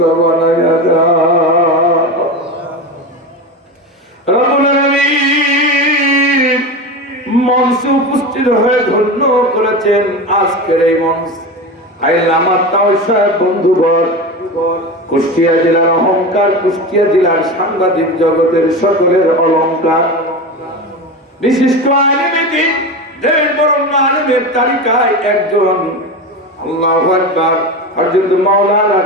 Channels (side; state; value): both; normal; correlation 0.24